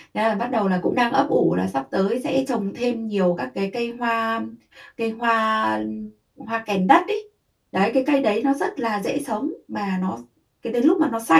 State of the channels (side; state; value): both; identical; correlation 1.00